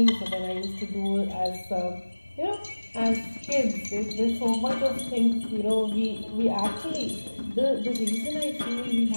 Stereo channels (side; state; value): both; inverted; correlation -1.00